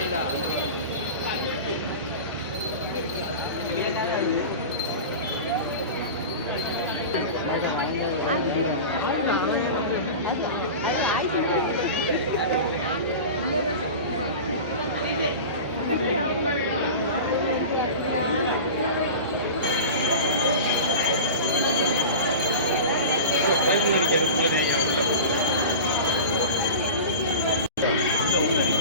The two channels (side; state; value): both; inverted; correlation -0.31